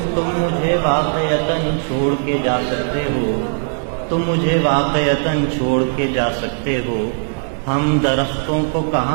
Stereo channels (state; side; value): silent; left; 63 dB below the other